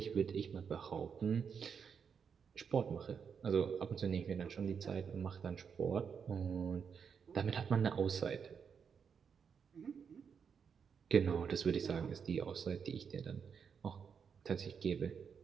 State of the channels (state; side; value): quieter; left; 6.7 dB